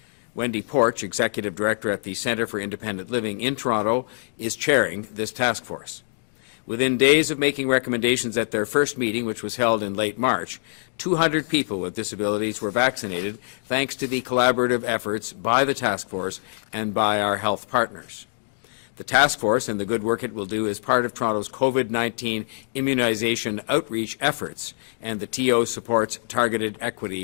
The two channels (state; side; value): silent; right; digital silence